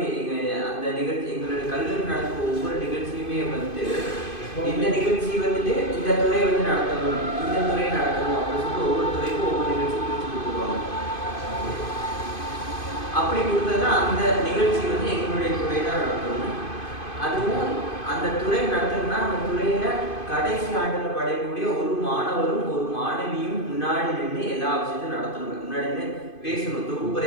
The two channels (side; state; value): right; late; 2.5 ms